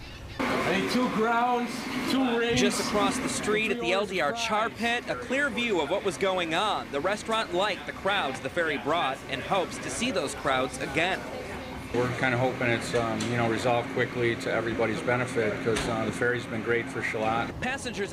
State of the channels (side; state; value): both; identical; correlation 1.00